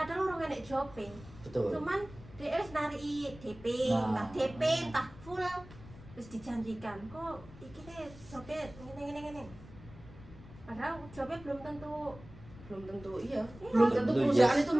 orang enek jope. Betul. Cuman dia wis nariki DP, Nah. entah DP, entah full wis dijanjikan. Kok iki teh jope ngene. Padahal jope belum tentu Iya. Iya. Belum tentu Belum, perusahaan yes. itu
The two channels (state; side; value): noise; left; rumble, 18 dB below the sound